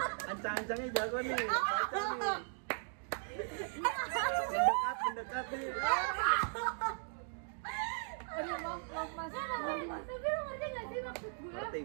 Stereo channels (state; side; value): silent; left; 53 dB below the other